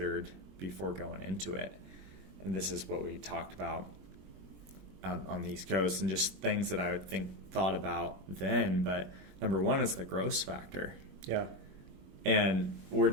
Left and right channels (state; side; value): late; left; 21 ms